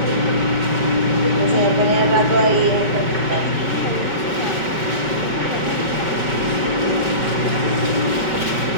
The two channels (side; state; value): left; late; 5.3 ms